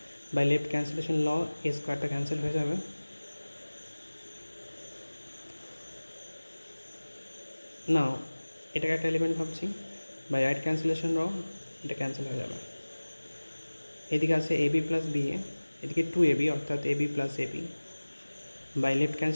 by left cancellation law a স্কোয়ারটা cancel হয়ে যাবে, নাও এটাকে একটা এলিমেন্ট ভাবছি, বাই রাইট ক্যান্সেলেশন ল এটা ক্যান্সেল হয়ে যাবে। এদিকে আছে a b plus b a, এদিকে 2ab অর্থাৎ a b plus a b, by left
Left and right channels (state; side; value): inverted; both; correlation -1.00